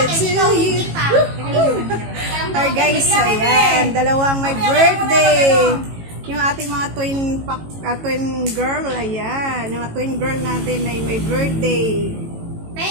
to you. Woo, woo. Alright guys, ayan. Dalawang may birthday. Yung ating mga twin girl, ayan. Yung mga twin girl natin ay may birthday.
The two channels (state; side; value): late; left; 18 ms